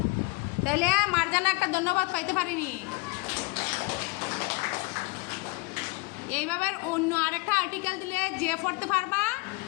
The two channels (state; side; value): quieter; right; 26.3 dB